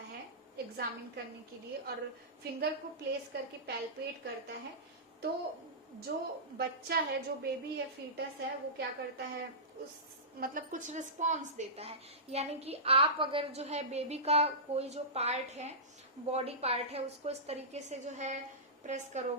है एग्जामिन करने के लिए, और फिंगर को प्लेस करके पैल्पेट करता है, तो जो बच्चा है, जो बेबी है, फीटस है, वो क्या करता है, उस मतलब कुछ रिस्पॉन्स देता है। यानी कि आप अगर जो है बेबी का कोई जो पार्ट है, बॉडी पार्ट है, उसको इस तरीके से जो है प्रेस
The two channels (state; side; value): normal; both; correlation -0.18